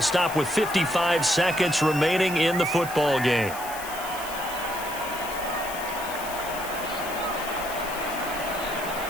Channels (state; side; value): noise; left; hiss, 12 dB below the sound